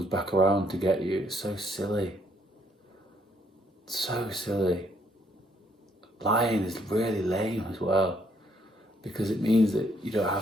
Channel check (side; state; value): both; normal; correlation 0.69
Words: back around to get you. It's so silly. So silly. Lying is really lame as well, because it means that you don't